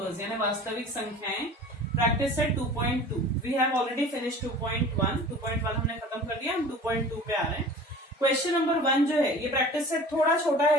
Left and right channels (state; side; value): normal; both; correlation 0.42